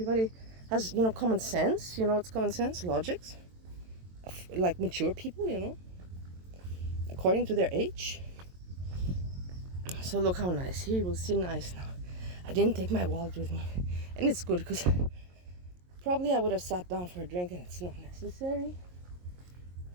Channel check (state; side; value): late; left; 22 ms